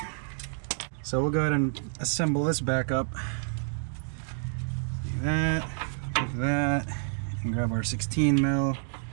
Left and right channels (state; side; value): silent; left; digital silence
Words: So we'll go ahead and assemble this back up. Like that, and grab our 16 mil.